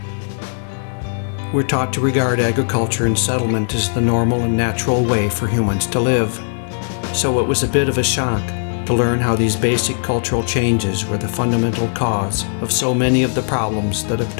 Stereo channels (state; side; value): silent; right; 63 dB below the other